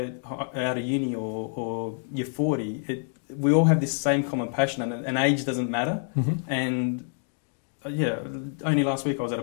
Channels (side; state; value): right; silent; 60 dB below the other